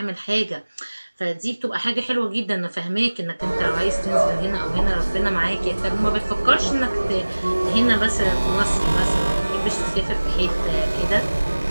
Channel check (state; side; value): inverted; both; correlation -1.00